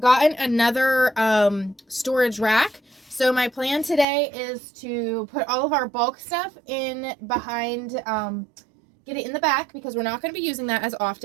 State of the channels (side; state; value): left; drops out; at 4.0 s